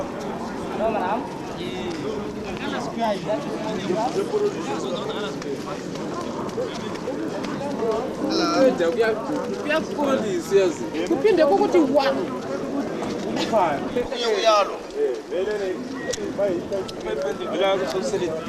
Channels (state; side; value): identical; both; correlation 1.00